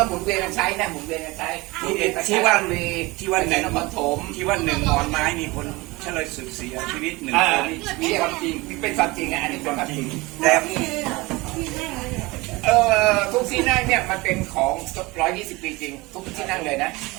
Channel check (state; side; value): quieter; left; 22.8 dB